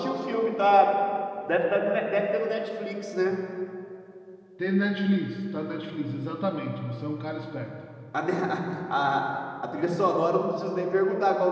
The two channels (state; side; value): identical; both; correlation 1.00